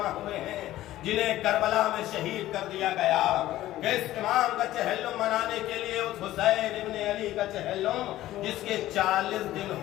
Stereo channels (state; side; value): quieter; right; 14.9 dB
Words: ہوئے ہیں جنہیں کربلا میں شہید کر دیا گیا. کس امام کا چہلم منانے کے لیے؟ اس حسین ابن علی کا چہلم جس کے 40 دن